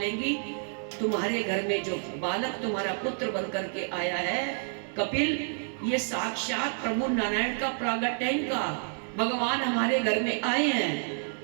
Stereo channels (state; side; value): silent; left; digital silence